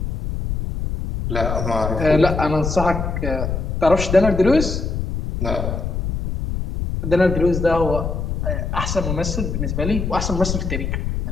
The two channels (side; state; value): left; noise; rumble, 3 dB below the sound